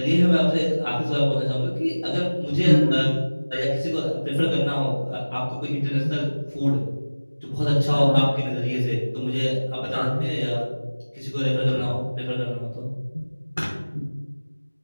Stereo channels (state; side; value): inverted; both; correlation -1.00